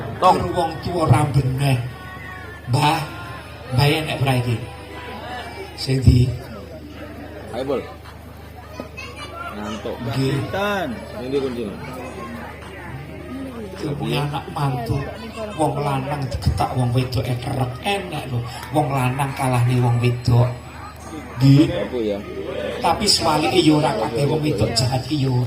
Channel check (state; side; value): identical; both; correlation 1.00